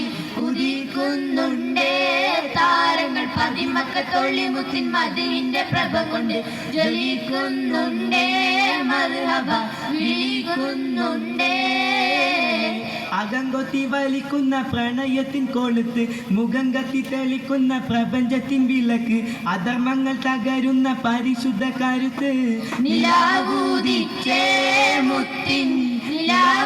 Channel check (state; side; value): identical; both; correlation 1.00